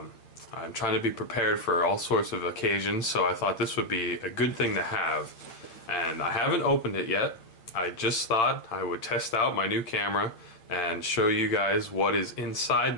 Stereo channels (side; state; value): right; late; 8.9 ms